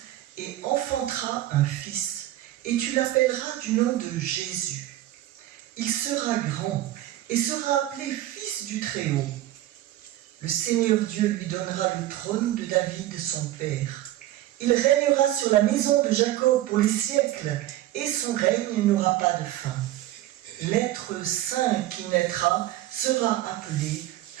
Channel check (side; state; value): left; quieter; 14.5 dB